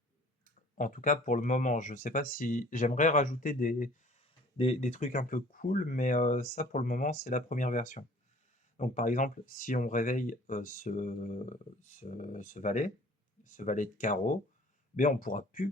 En tout cas, pour le moment, je ne sais pas si j'aimerais rajouter des trucs un peu cool, mais ça, pour le moment, c'est la première version. Donc, par exemple, si on réveille ce valet de carreau, ben, on ne pourra plus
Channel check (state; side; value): normal; both; correlation 0.51